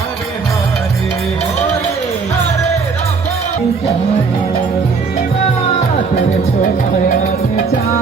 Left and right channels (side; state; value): left; quieter; 4.9 dB